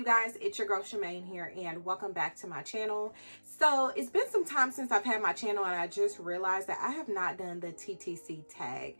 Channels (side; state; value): both; inverted; correlation -1.00